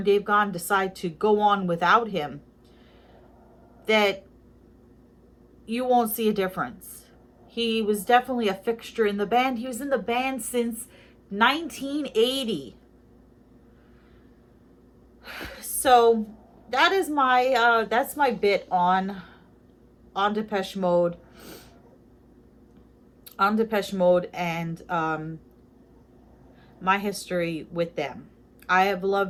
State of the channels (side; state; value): both; identical; correlation 1.00